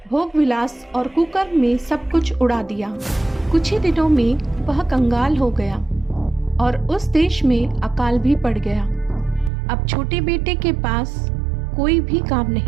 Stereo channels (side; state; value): left; drops out; at 9.5 s